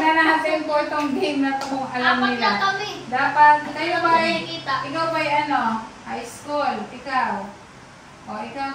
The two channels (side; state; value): both; identical; correlation 1.00